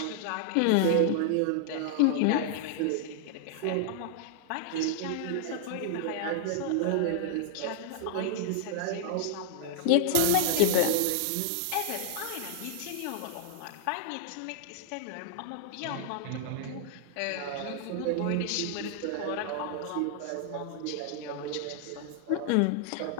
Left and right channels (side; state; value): both; different; correlation -0.01